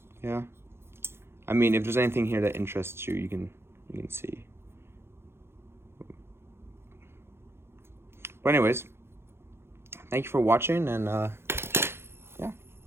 Yeah, I mean, if there's anything here that interests you, you can see. But anyways, thank you for watching, and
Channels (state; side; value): late; left; 0.12 ms